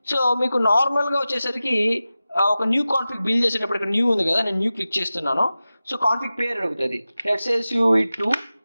సో మీకు నార్మల్గా వచ్చేసరికి ఒక న్యూ కాన్ఫిగ్ బిల్డ్ చేసేటప్పుడు ఇక్కడ న్యూ ఉంది కదా, నేను న్యూ క్లిక్ చేస్తున్నాను. సో కాన్ఫిగ్ పేరు అడుగుతుంది, లెట్స్ సే UV2.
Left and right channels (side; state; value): both; inverted; correlation -0.95